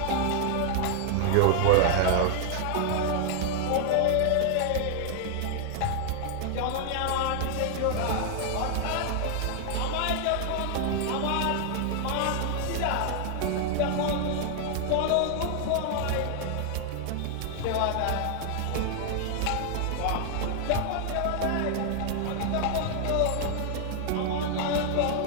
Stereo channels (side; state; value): both; different; correlation 0.00